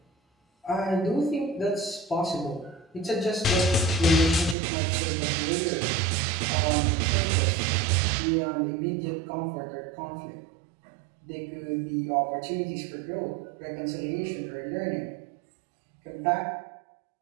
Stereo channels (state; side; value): drops out; left; at 4.5 s